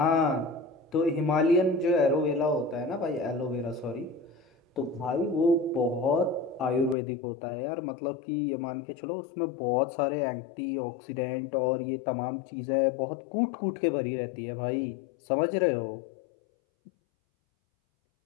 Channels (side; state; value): right; drops out; at 7.0 s